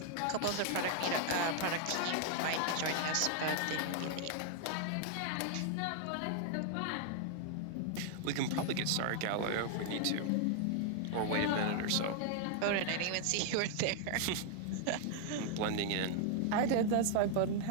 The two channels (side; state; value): both; different; correlation 0.00